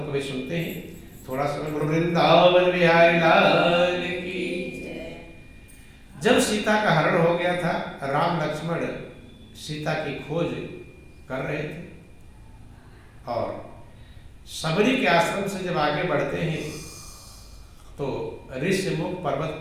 कभी सुनते हैं? थोड़ा सा वृंदावन बिहारी लाल की। जब सीता का हरण हो गया था, राम लक्ष्मण सीता की खोज कर रहे थे, और सबरी के आश्रम से जब आगे बढ़ते हैं तो ऋष्यमुख पर्वत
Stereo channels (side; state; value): both; identical; correlation 1.00